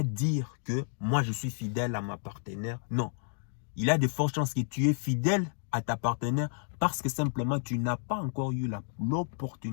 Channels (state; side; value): silent; right; digital silence